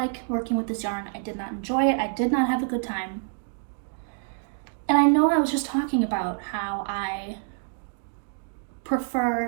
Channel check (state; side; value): silent; left; 60 dB below the other